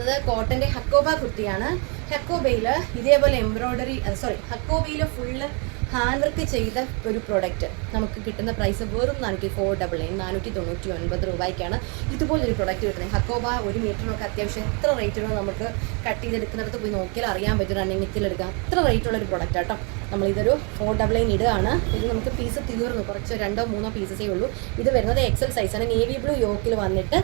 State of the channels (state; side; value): quieter; left; 34.2 dB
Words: കോട്ടൻ്റെ ഹക്കോബ കുർത്തിയാണ്. ഹക്കോബയിൽ ഇതേപോലെ എംബ്രോയ്ഡറി ഹക്കോബയിൽ ഫുള്ള് ഹാൻഡ് വർക്ക് ചെയ്ത ഒരു പ്രൊഡക്റ്റ് നമുക്ക് കിട്ടുന്ന പ്രൈസ് വെറും 499 499 രൂപയ്ക്കാണ് ഇതുപോലൊരു പ്രൊഡക്റ്റ് കിട്ടുന്നത്. ഹക്കോബ 1 മീറ്ററിനൊക്കെ അത്യാവശ്യം എത്ര റേറ്റിനോ നമുക്ക് കട്ട് ചെയ്തെടുക്കുന്നിടത്ത് പോയി നോക്കിയാൽ അറിയാൻ പറ്റും. റണ്ണിങ് നെറ്റിലെടുക്കാം. അത്ര റേറ്റുള്ളൊരു പ്രൊഡക്റ്റ് ആട്ടോ. നമ്മളിതൊരു 499 ഇടുകയാണ്. ഇത് നമുക്ക് പീസ് തീർന്നു. കുറച്ച് 2-3 പീസസേ ഉള്ളൂ. ഇത് വരുന്നത് എക്സൽ സൈസാണ്. നേവി ബ്ലൂ യോക്കിൽ വന്നിട്ട്